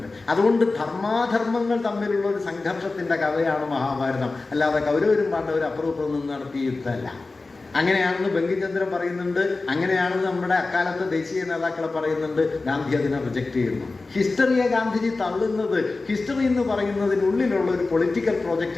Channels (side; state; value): right; quieter; 3.6 dB